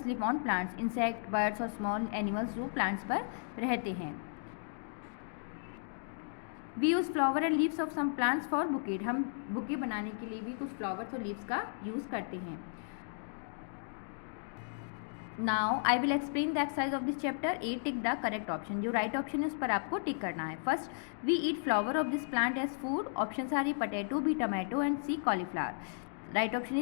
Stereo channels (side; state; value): right; silent; digital silence